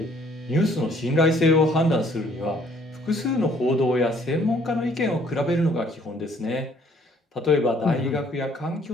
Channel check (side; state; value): both; normal; correlation 0.61